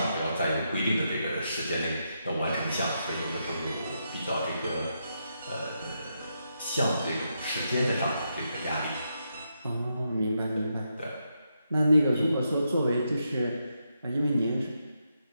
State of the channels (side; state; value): both; inverted; correlation -0.82